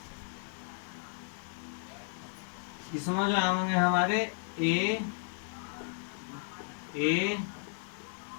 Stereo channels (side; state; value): right; silent; 55 dB below the other